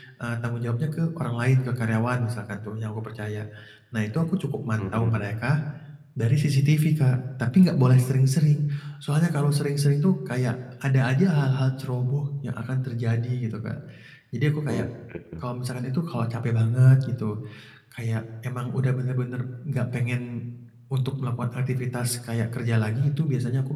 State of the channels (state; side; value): identical; both; correlation 1.00